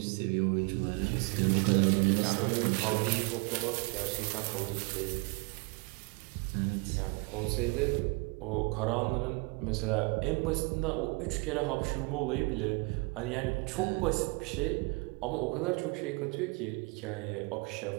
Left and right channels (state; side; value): quieter; left; 29.6 dB